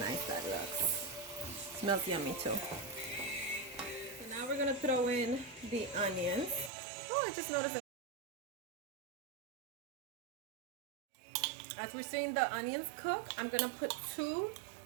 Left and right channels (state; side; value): drops out; left; at 6.7 s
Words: nice that looks. Smells yummy too. So now we're gonna throw in the onions. Oh, I just noticed that. As we're seeing the onions cook, I'm gonna put 2